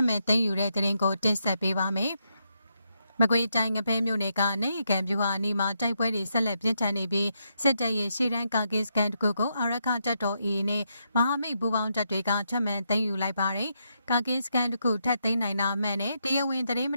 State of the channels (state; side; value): inverted; both; correlation -0.80